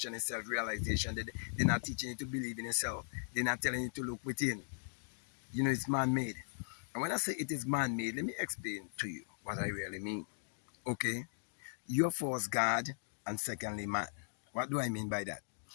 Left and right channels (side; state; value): right; silent; digital silence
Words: is self-realization. They're not teaching you to believe in yourself. They're not telling you to look within. You know, it's man-made. And when I say it is man-made, let me explain to you what I really mean. Okay? You're first God and secondly man. What do I mean by that?